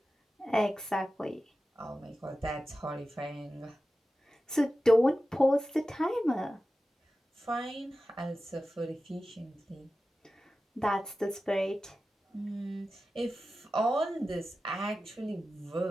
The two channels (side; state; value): both; normal; correlation 0.94